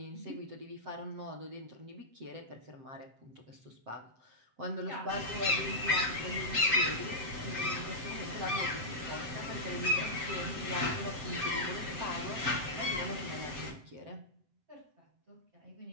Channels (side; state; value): left; late; 7.8 ms